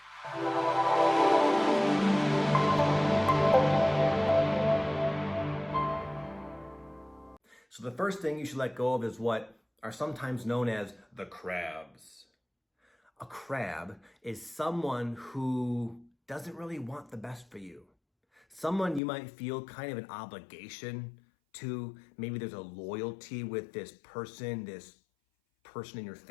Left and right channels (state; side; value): drops out; right; at 19.0 s